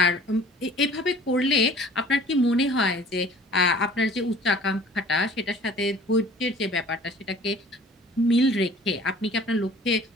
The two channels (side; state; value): both; normal; correlation 0.49